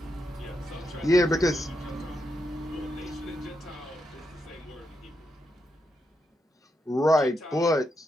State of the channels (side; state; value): both; normal; correlation 0.83